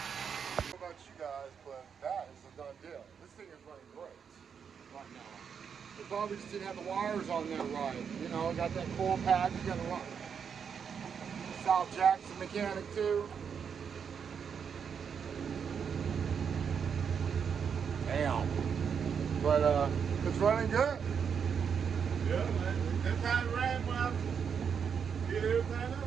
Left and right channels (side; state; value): left; quieter; 7.0 dB